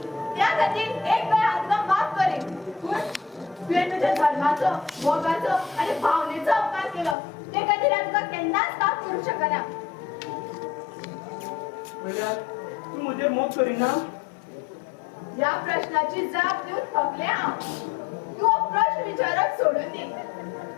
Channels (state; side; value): drops out; right; at 7.2 s